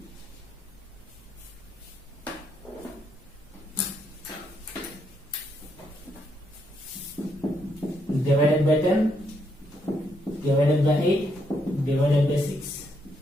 divided by 10 divided by 8 divided by 6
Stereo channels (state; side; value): normal; both; correlation 0.76